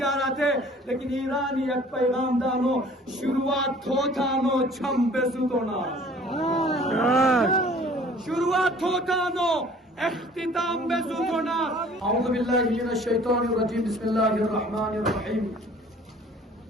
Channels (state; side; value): normal; both; correlation 0.51